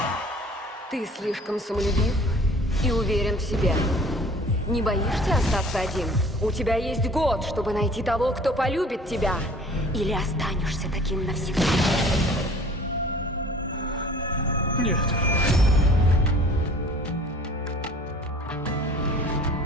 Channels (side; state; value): both; normal; correlation 0.49